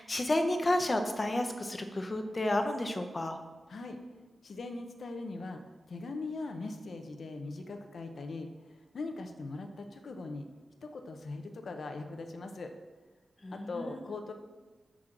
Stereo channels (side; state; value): both; normal; correlation 0.94